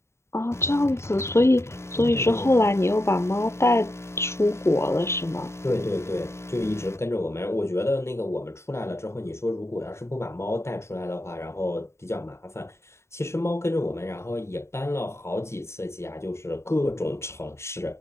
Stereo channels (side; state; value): right; late; 0.13 ms